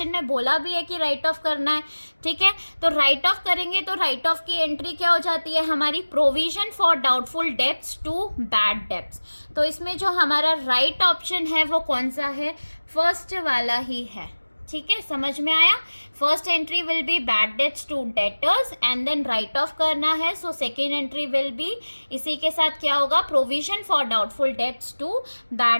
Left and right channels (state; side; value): inverted; both; correlation -1.00